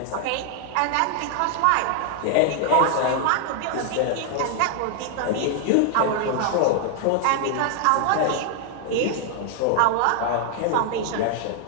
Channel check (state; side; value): different; both; correlation 0.00